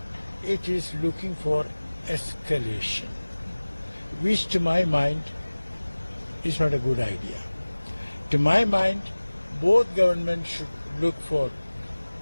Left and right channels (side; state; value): both; inverted; correlation -1.00